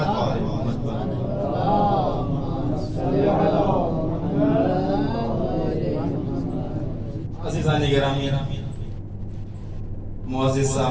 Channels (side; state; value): both; identical; correlation 1.00